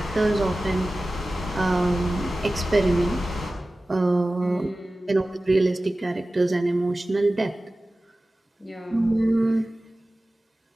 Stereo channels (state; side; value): normal; both; correlation 0.96